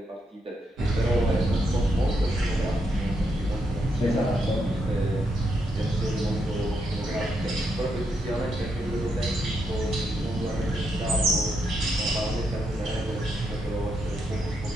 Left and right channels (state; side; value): normal; both; correlation 0.80